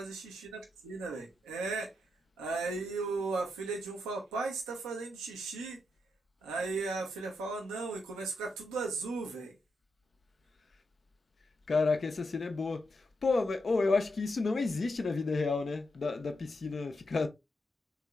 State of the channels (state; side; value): normal; both; correlation 0.84